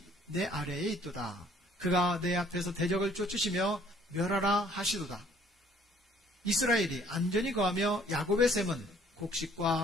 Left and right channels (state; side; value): normal; both; correlation 0.60